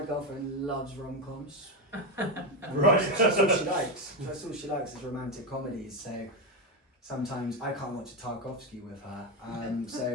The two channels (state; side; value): normal; both; correlation 0.10